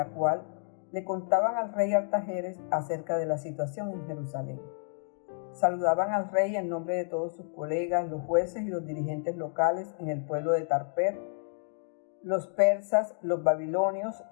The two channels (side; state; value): right; silent; 58 dB below the other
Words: cual le contaban al rey Artajerjes acerca de la situación en Jerusalén. Saludaban al rey en nombre de todos sus colegas, los jueces y los dirigentes locales en el pueblo de Tarper, los persas, los babilonios